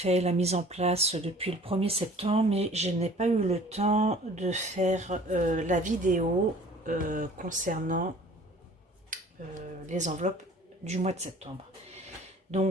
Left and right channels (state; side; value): normal; both; correlation 0.49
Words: la mise en place depuis le 1er septembre, mais je n'ai pas eu le temps de faire la vidéo concernant les enveloppes du mois de septembre.